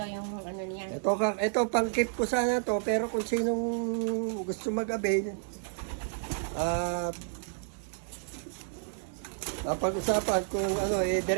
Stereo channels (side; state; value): left; silent; digital silence